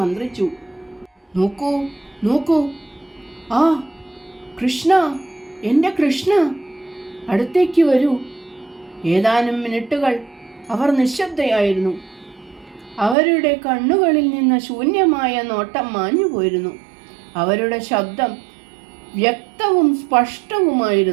നോക്കൂ നോക്കൂ, ആ കൃഷ്ണ, എൻ്റെ കൃഷ്ണ, അടുത്തേക്ക് വരൂ. ഏതാനും മിനിറ്റുകൾ അവർ നിശബ്ദയായിരുന്നു. അവരുടെ കണ്ണുകളിൽ നിന്ന് ശൂന്യമായ നോട്ടം മാഞ്ഞുപോയിരുന്നു. അവരുടെ ശബ്ദം വ്യക്തവും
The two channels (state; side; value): drops out; left; at 13.2 s